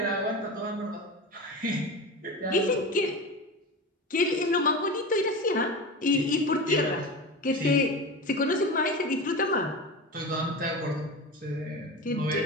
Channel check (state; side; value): normal; both; correlation 0.26